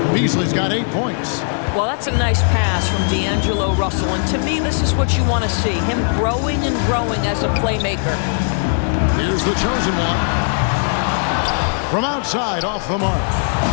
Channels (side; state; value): right; silent; 67 dB below the other